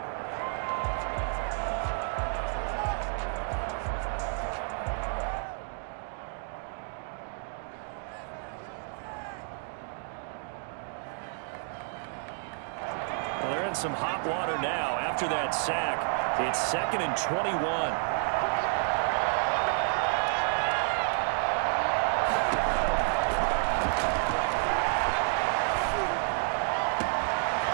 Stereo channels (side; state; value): left; silent; 58 dB below the other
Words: Well, they're in some hot water now. After that sack, it's 2nd and 21.